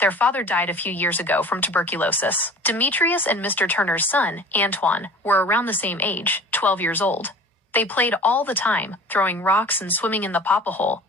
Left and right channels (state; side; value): normal; both; correlation 0.42